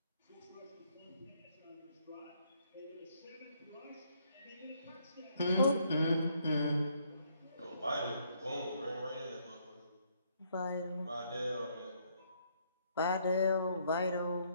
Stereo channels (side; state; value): both; inverted; correlation -0.70